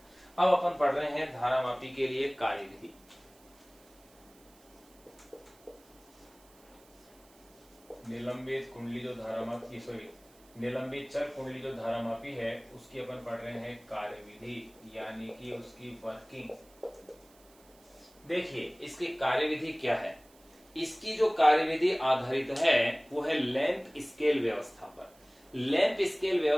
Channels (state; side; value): noise; right; hiss, 28 dB below the sound